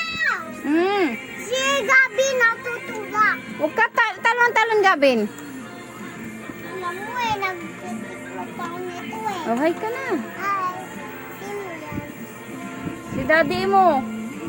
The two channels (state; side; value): identical; both; correlation 1.00